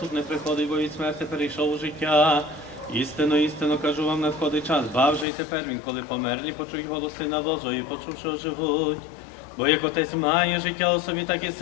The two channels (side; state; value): right; drops out; at 5.2 s